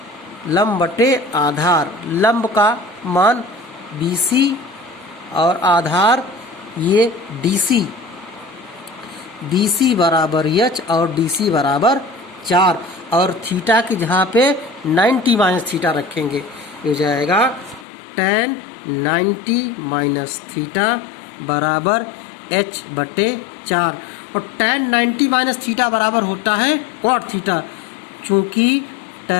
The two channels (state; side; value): drops out; right; at 17.9 s